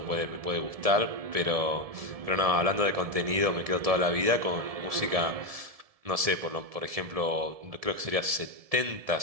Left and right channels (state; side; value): late; left; 1.7 ms